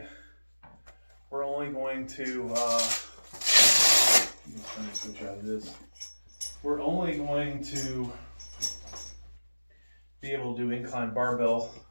We're only going to, let me switch out of this. We're only going to be able to do incline barbell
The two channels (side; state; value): both; inverted; correlation -1.00